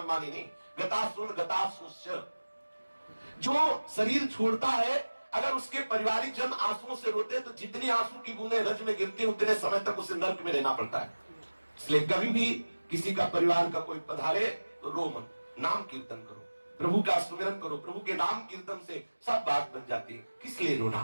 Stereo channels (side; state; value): both; inverted; correlation -1.00